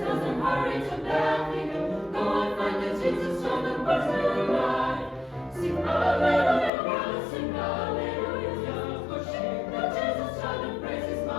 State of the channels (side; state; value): right; drops out; at 6.7 s